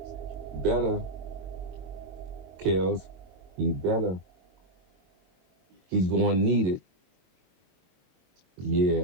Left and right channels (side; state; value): left; late; 22 ms